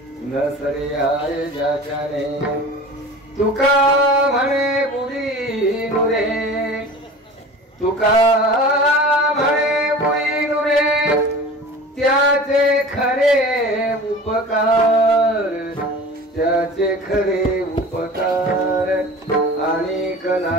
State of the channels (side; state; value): both; normal; correlation 0.38